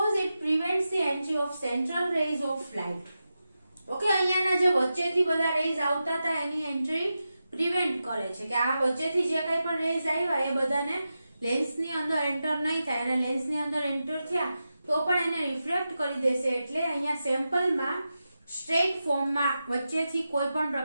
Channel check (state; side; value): inverted; both; correlation -0.91